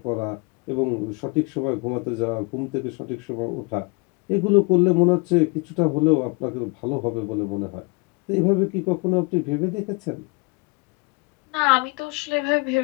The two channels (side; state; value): right; quieter; 29.0 dB